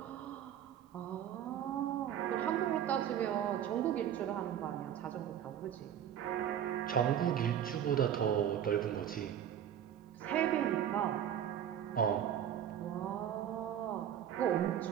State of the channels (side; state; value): left; quieter; 9.9 dB